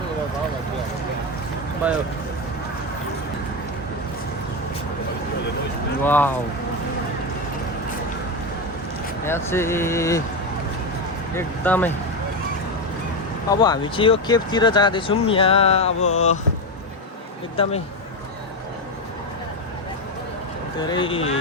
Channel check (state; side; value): normal; both; correlation 0.12